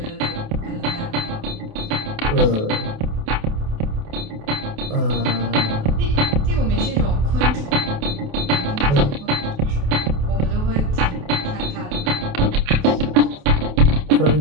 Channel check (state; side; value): late; left; 28 ms